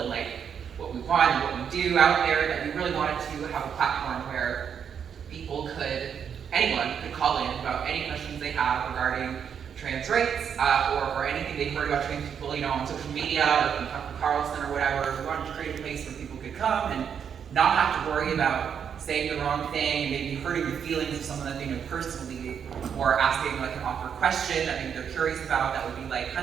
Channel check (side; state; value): left; quieter; 7.7 dB